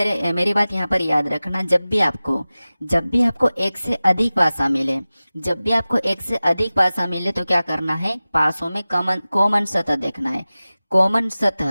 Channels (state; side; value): inverted; both; correlation -0.97